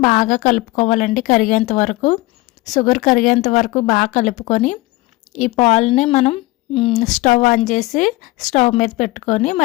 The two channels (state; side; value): quieter; right; 20.5 dB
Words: బాగా కలుపుకోవాలండి. కరిగేంత వరకు షుగర్ కరిగేంత వరకు బాగా కలుపుకొని ఈ పాలని మనం స్టవ్ ఆన్ చేసి స్టవ్ మీద పెట్టుకొని